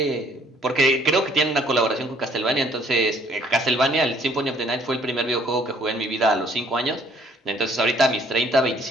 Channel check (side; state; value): both; normal; correlation 0.61